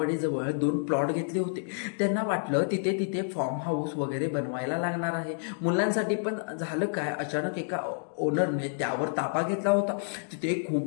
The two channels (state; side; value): silent; right; digital silence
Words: 2 प्लॉट घेतले होते. त्यांना वाटलं तिथे फार्म हाऊस वगैरे बनवायला लागणार आहे मुलांसाठी. पण झालं काय, अचानक एका ओनरने त्यावर ताबा घेतला होता. तिथे